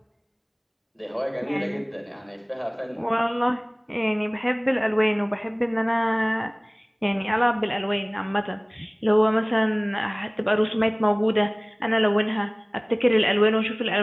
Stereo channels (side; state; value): both; identical; correlation 1.00